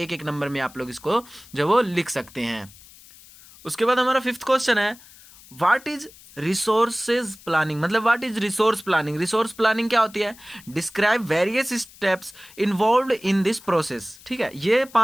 नंबर में आप लोग इसको जो वो लिख सकते हैं। उसके बाद हमारा 5th क्वेश्चन है, व्हाट इज रिसोर्सेज प्लानिंग, मतलब what is resource planning. Resource planning क्या होती है, describe various steps involved in this process. ठीक है, ये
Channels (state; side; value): noise; left; hiss, 22 dB below the sound